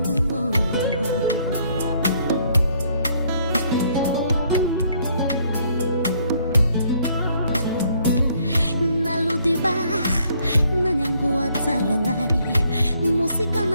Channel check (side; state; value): both; inverted; correlation -0.67